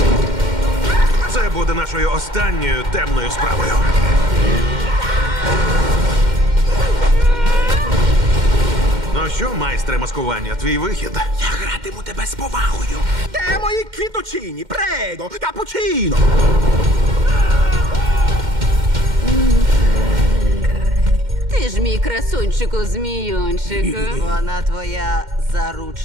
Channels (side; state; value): left; late; 2.1 ms